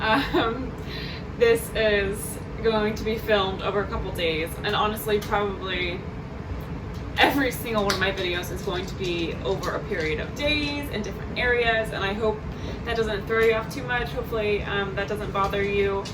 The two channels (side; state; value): both; identical; correlation 1.00